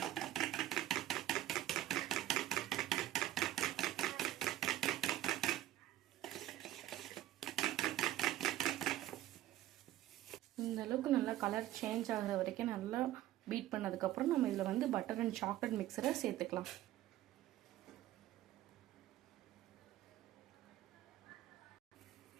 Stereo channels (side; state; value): left; quieter; 14.2 dB